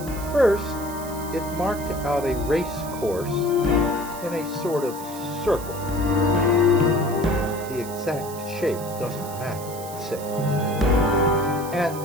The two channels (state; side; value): noise; right; hiss, 14 dB below the sound